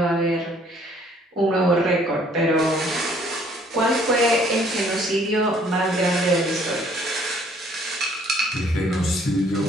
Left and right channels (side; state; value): both; normal; correlation 0.61